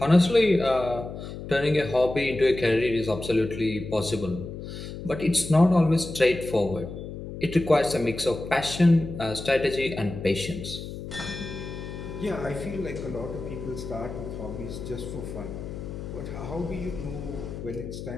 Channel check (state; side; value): noise; left; hum, 9 dB below the sound